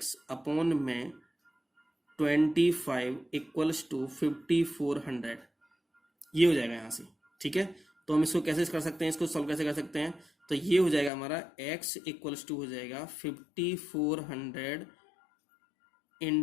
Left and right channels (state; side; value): drops out; right; at 11.1 s